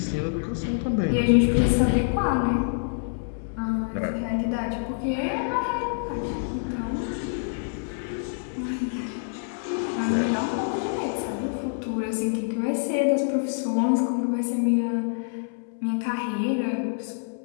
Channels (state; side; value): silent; right; 61 dB below the other